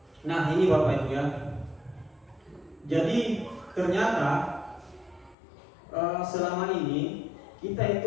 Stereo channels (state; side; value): drops out; right; at 5.4 s